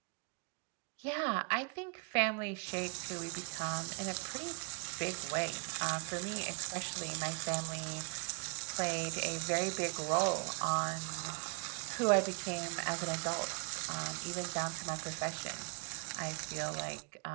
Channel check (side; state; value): left; quieter; 34.2 dB